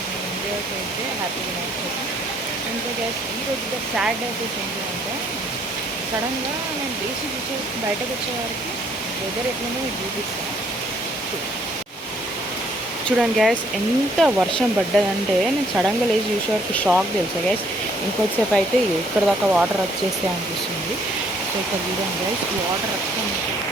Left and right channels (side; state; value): both; normal; correlation 0.64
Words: నేను ఇండియాకి అయితే హ్యాపీ వినాయక చవితి. ఇంకా గ్యాస్ ఈరోజు సాడ్ డేస్ ఏంటంటే సడన్గా నేను లేచి చూసే బయటకు వచ్చేవారికి వెదర్ ఎట్లనో మీకు చూపిస్తాను. చూడండి గ్యాస్, ఎంత వర్షం పడ్డదంటే నేను సడన్గా లేచి చూసేవారికి షాక్ తెలుసా గ్యాస్. ఇంకొద్దిసేపు అయితే ఇక్కడ దాకా వాటర్ వచ్చేస్తే అనిపిస్తుంది. సో ఇక్కడ చూడండి గ్యాస్, వాటర్ అక్కడ